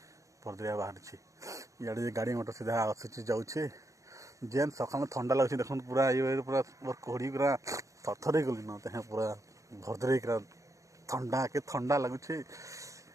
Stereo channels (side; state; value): left; late; 0.15 ms